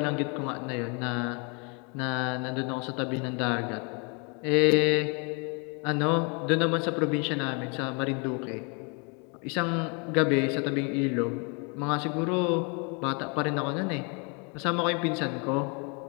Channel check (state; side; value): quieter; right; 34.0 dB